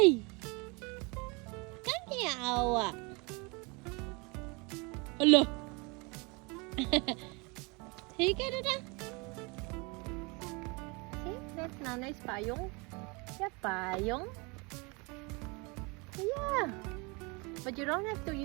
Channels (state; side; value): quieter; left; 28.8 dB